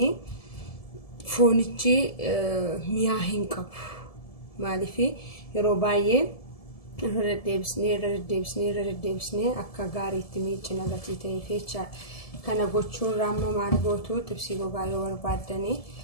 foonichi miyaa hin qabu maaliif yeroo baay'ee irra deebisnee akka gaariitti miicina gatii ta'eef jecha kana gochuun raamma maal gootu xibsii gogaa yoo barbaadanii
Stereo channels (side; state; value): right; late; 1.7 ms